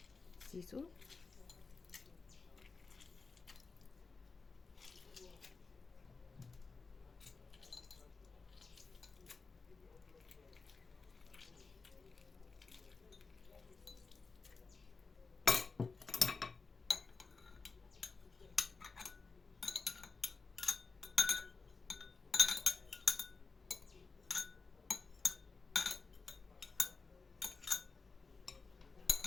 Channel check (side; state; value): right; quieter; 4.4 dB